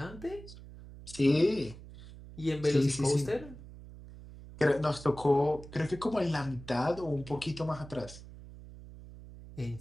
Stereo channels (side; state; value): right; noise; hum, 16 dB below the sound